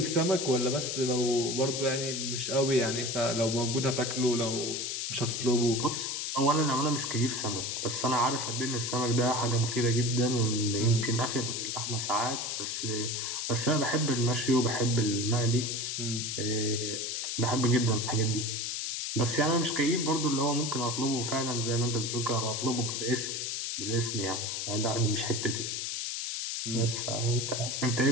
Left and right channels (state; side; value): noise; left; hiss, 2 dB below the sound